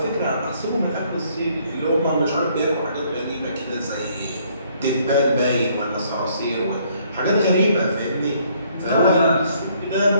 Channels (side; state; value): both; inverted; correlation -0.65